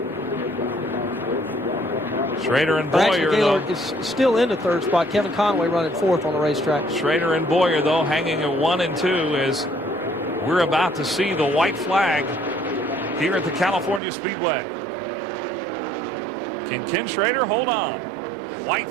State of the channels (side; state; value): left; drops out; at 14.0 s